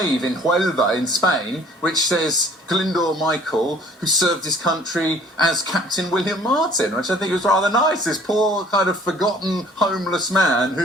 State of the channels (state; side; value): normal; both; correlation 0.54